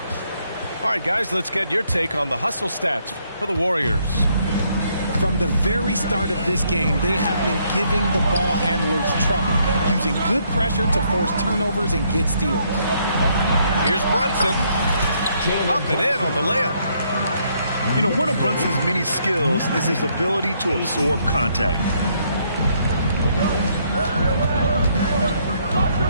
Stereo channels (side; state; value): both; inverted; correlation -0.71